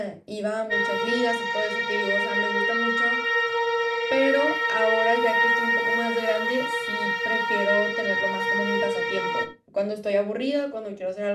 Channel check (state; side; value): identical; both; correlation 1.00